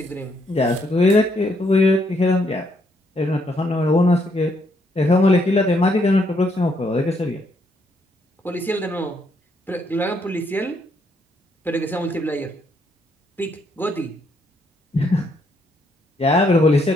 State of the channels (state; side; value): normal; both; correlation 0.73